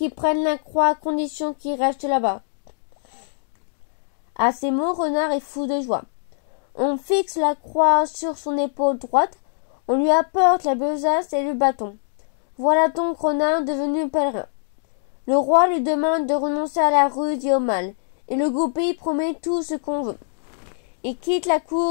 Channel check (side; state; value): right; silent; digital silence